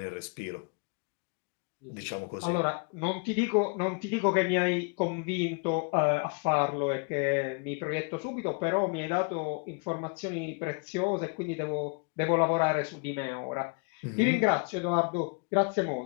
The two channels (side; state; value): right; quieter; 34.4 dB